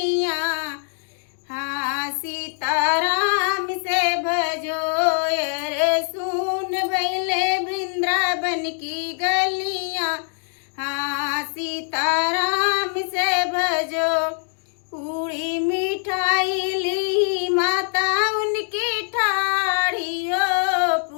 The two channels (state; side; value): silent; right; 61 dB below the other